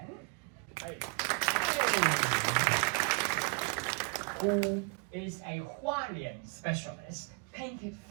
who is a Hualian specialist, painted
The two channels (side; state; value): left; quieter; 35.4 dB